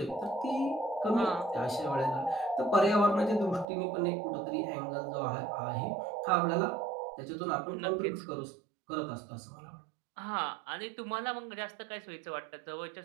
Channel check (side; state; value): left; drops out; at 3.7 s